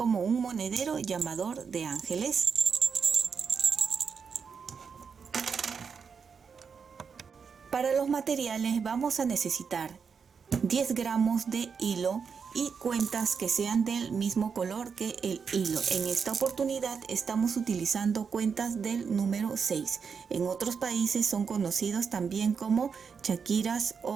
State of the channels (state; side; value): quieter; left; 6.1 dB